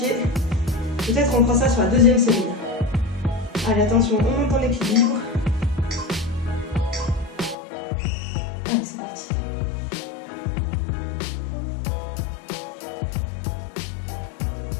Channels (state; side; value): drops out; right; at 7.6 s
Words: Peut-être on fera ça sur la deuxième série. Allez, attention, on monte en équilibre. Allez, c'est parti.